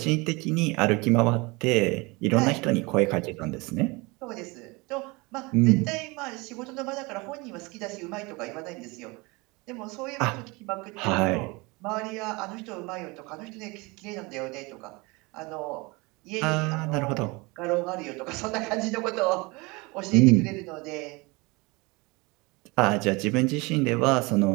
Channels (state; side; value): quieter; left; 25.6 dB